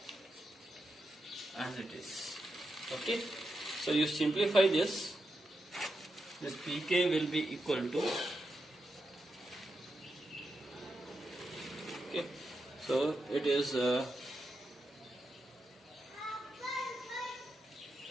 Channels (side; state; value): both; normal; correlation 0.86